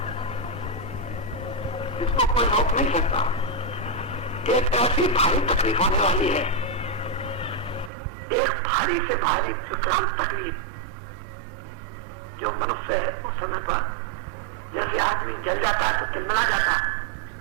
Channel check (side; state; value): left; drops out; at 7.9 s